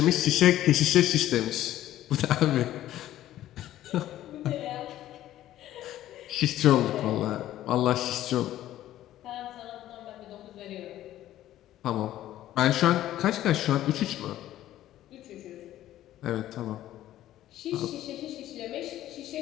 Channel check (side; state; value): right; quieter; 13.4 dB